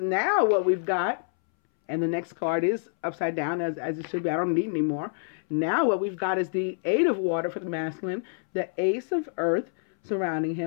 what we've got, and the next card is upside down as it should be. I don't need any more. Now what we've got is the 8 of water for the masculine, the ace of earth surrounding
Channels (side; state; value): right; silent; 60 dB below the other